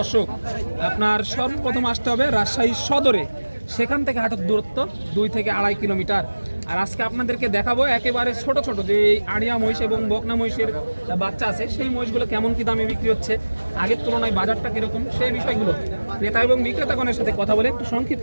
আপনার সর্বপ্রথম আসতে হবে রাজশাহী সদরে। সেখান থেকে হাটের দূরত্ব 2 থেকে 2.5 কিলোমিটার। আর আজকে আপনাদেরকে দেখাবো একেবারে ছোট ছোট যে আড়িয়া মহিষ এবং বকনা মহিষের বাচ্চা আছে, সেই মহিষগুলো কেমন কি দামে বিক্রি হচ্ছে, আগের তুলনায় বাজারটা কিরকম, সেই বিষয়গুলো ক্রেতা এবং বিক্রেতাগণের সাথে কথা বলে একটু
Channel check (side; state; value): both; inverted; correlation -1.00